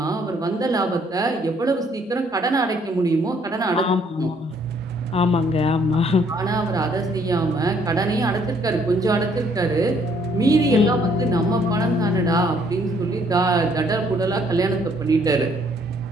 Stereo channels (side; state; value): both; normal; correlation 0.65